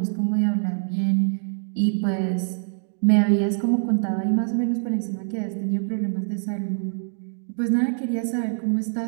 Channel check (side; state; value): left; silent; 62 dB below the other